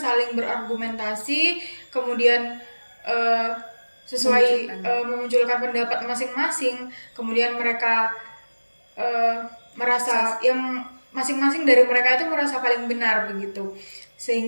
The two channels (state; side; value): inverted; both; correlation -1.00